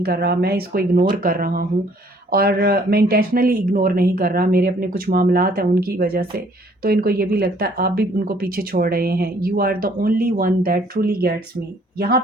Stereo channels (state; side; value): normal; both; correlation 0.61